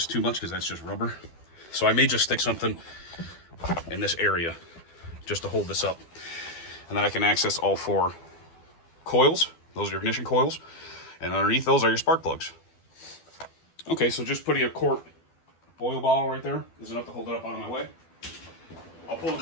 too much because that's just rubber. So I may just stick something in this area just to hold this up. And then I can access all 4 coils. Those are your ignition coils. And underneath those are your spark plugs. Okay, so just putting a quart oil bottle right there is enough to hold it up out of my way. I'll pull the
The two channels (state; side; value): late; right; 12 ms